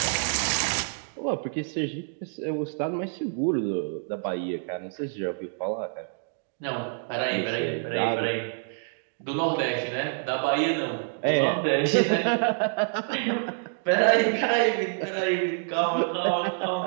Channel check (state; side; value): silent; left; digital silence